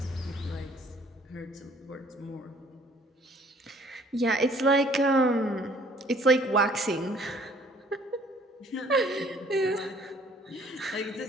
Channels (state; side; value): normal; both; correlation 0.58